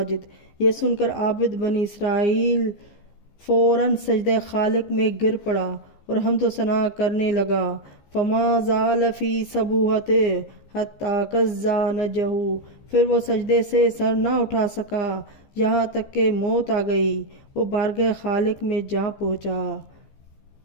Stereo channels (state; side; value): late; right; 15 ms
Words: یہ سن کر عابد بنی اسرائیل فوراً سجدہ خالق میں گر پڑا اور حمد و ثنا کرنے لگا۔ فما زال فی سبوحتہ حتی کزا نجہ، پھر وہ سجدے سے سر نہ اٹھا سکا یہاں تک کہ موت آ گئی، وہ بارگاہ خالق میں جا پہنچا۔